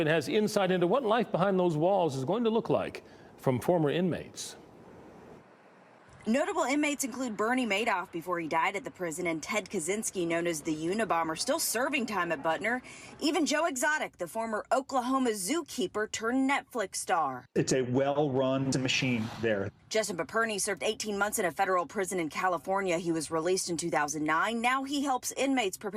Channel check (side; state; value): both; identical; correlation 1.00